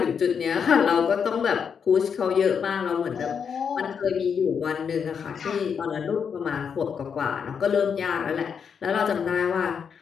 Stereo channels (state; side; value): quieter; right; 6.8 dB